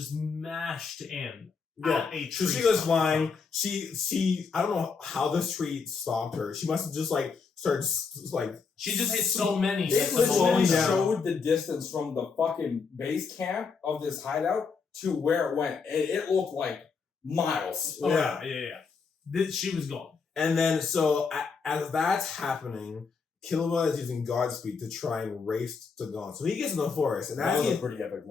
mashed in. Yeah, a so tree she goes stump. flying. She I don't know how this tree stopped her. She must have just like started like. She just hit so many. It was slowing literally down. showed the distance from the fucking base camp of this hideout to where it went. It looked like miles. Oh, Yeah. yeah. She was gone. And then so as that's happening, Killua is using Godspeed to try and race to Gon. So he gets in the forest, and That as was he, a pretty epic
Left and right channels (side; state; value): right; quieter; 5.2 dB